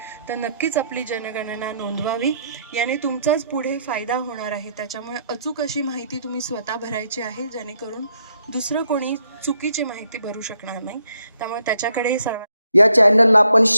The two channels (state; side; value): inverted; both; correlation -0.74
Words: तर नक्कीच आपली जनगणना नोंदवावी. याने तुमचाच पुढे फायदा होणार आहे. त्याच्यामुळे अचूक अशी माहिती तुम्ही स्वतः भरायची आहे, जेणेकरून दुसरं कोणी चुकीची माहिती भरू शकणार नाही. त्यामुळे त्याच्याकडे सर्व या चॅनलला आपण